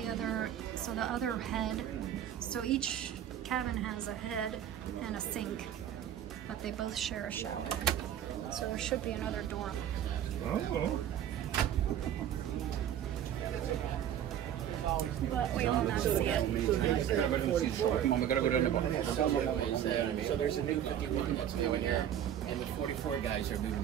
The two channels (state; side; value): quieter; left; 10.3 dB